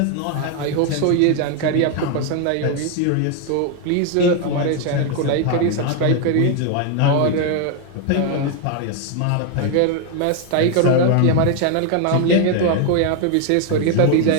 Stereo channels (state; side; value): different; both; correlation 0.01